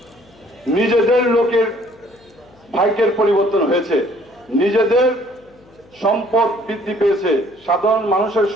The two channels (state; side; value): noise; left; hum, 28 dB below the sound